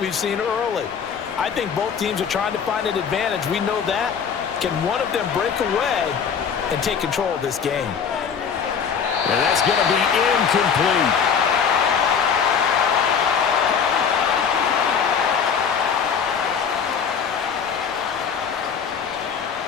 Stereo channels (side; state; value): right; quieter; 6.8 dB